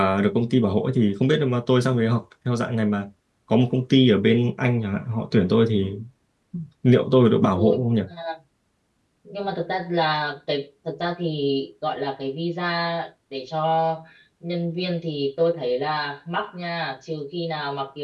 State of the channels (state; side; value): identical; both; correlation 1.00